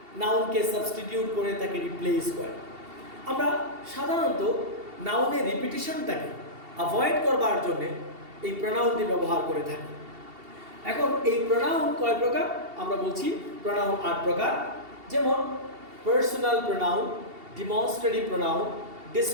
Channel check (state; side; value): late; left; 2.7 ms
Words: নাউনকে সাবস্টিটিউট করে তাকে রিপ্লেস করে। আমরা সাধারণত নাউনের রিপিটিশনটাকে অ্যাভয়েড করবার জন্যে এই প্রোনাউনটি ব্যবহার করে থাকি। এখন এই প্রোনাউন কয় প্রকার আমরা বলছি, প্রোনাউন 8 প্রকার। যেমন personal pronoun, demonstrative pronoun,